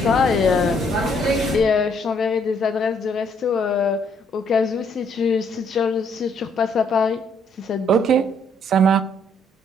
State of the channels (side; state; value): both; normal; correlation 0.68